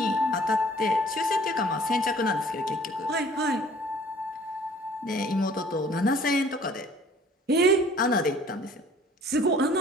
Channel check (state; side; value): normal; both; correlation 0.53